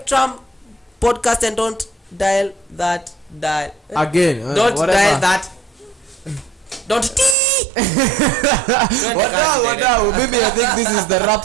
podcast, and don't dial that again. Don't whatever. dial that. Don't Wadau, maybe I think this is the wrap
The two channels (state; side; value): drops out; left; at 7.4 s